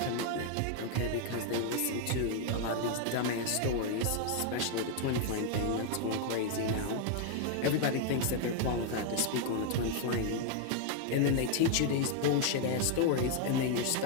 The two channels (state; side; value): different; both; correlation 0.00